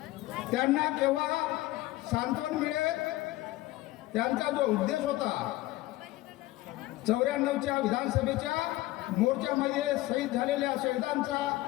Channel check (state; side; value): quieter; right; 17.8 dB